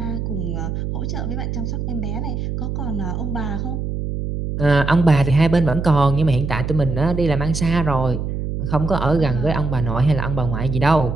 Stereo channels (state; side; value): noise; right; hum, 3 dB below the sound